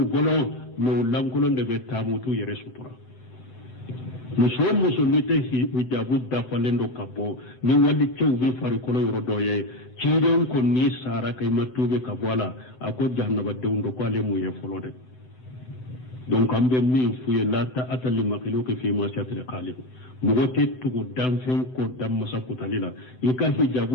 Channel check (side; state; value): right; late; 7.9 ms